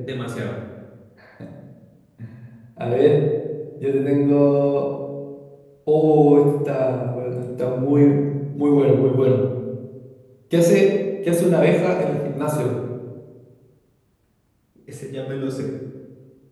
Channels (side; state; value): both; identical; correlation 1.00